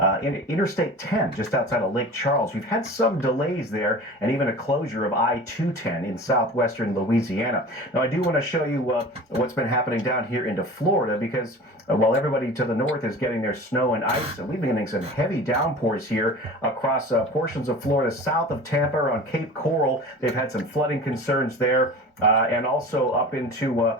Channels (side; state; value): both; normal; correlation 0.38